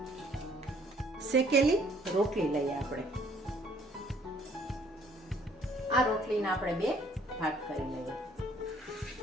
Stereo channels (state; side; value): normal; both; correlation 0.61